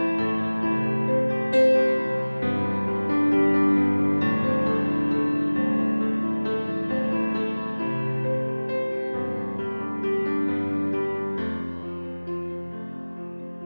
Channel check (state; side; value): inverted; both; correlation -1.00